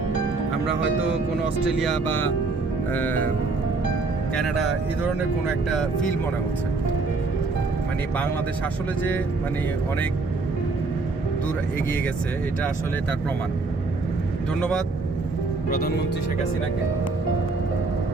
আমরা হয়তো কোনো অস্ট্রেলিয়া বা কানাডা এই ধরনের কোনো একটা ফিল মনে হচ্ছে। মানে বাংলাদেশ আসলে যে মানে অনেক দূর এগিয়ে গেছে, এটা আসলে তার প্রমাণ। ধন্যবাদ প্রধানমন্ত্রী শেখ হাসিনাকে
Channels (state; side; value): quieter; left; 3.8 dB